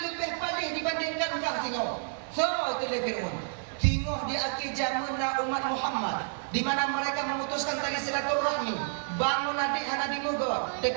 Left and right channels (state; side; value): silent; left; 58 dB below the other